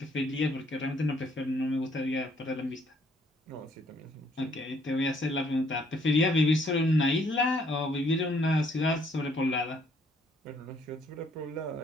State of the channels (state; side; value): normal; both; correlation 0.66